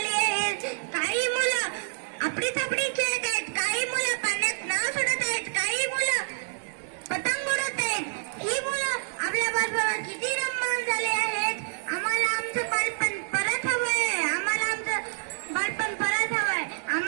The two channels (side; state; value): left; silent; 55 dB below the other